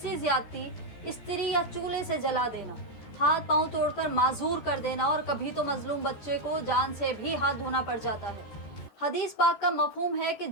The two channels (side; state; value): right; late; 14 ms